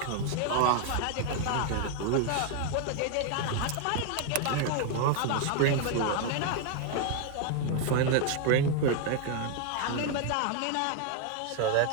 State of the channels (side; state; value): both; different; correlation 0.00